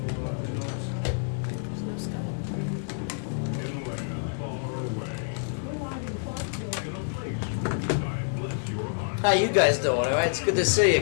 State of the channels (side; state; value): right; silent; 59 dB below the other